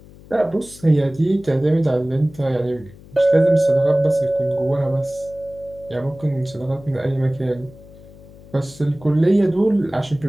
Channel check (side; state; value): left; noise; hum, 21 dB below the sound